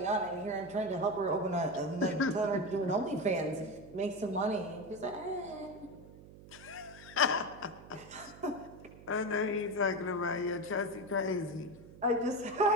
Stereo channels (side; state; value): right; noise; hum, 18 dB below the sound